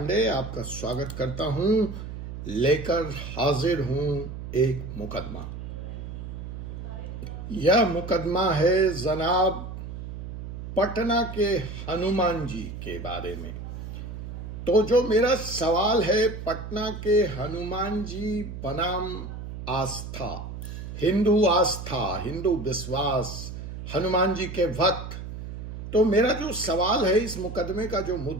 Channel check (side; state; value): right; noise; hum, 9 dB below the sound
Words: आपका स्वागत करता हूं। लेकर हाजिर हूं एक मुकदमा। यह मुकदमा है जनाब पटना के हनुमान जी के बारे में। तो जो मेरा सवाल है, पटना के हनुमान जी बनाम आस्था, हिंदू विश्वास, हनुमान जी के भक्त। तो मेरा जो सवाल है, इस मुकदमे का जो